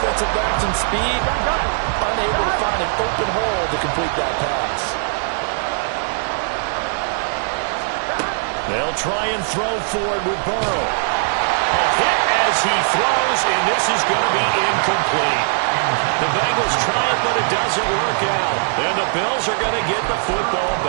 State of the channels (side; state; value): left; silent; digital silence